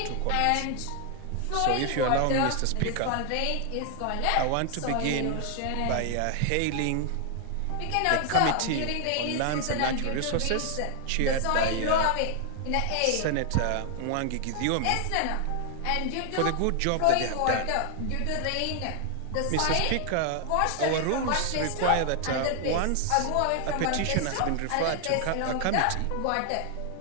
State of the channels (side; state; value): both; different; correlation 0.00